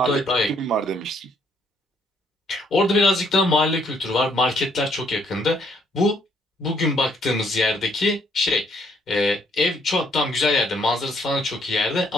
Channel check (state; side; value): normal; both; correlation 0.69